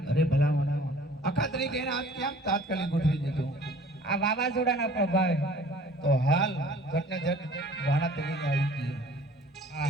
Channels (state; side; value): normal; both; correlation 0.51